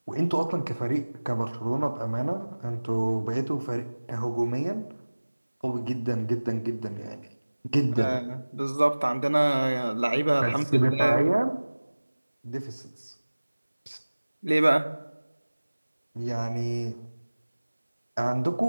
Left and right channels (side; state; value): both; inverted; correlation -1.00